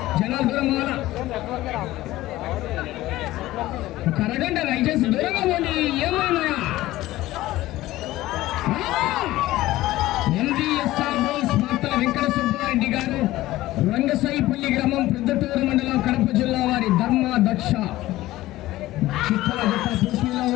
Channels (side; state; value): right; quieter; 16.6 dB